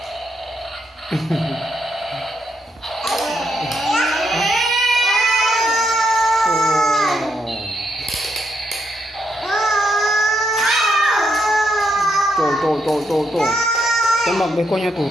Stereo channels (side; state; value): both; normal; correlation 0.78